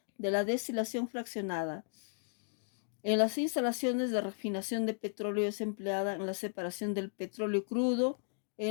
de la destilación fraccionada. En las instalaciones de refinación de petróleo es empleada en la separación del petróleo crudo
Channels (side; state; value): right; silent; digital silence